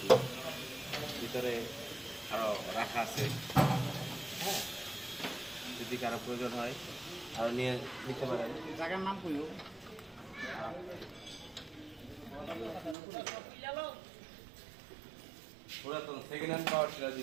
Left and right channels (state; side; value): drops out; left; at 13.0 s